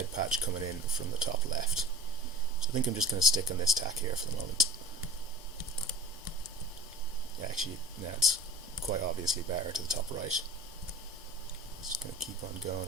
patch coming in from the top left. So I think I'm just going to stick on this tack here for the moment. Yeah, actually, it's quite obviously better to the top right. Just going to keep on going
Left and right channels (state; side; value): normal; both; correlation 0.39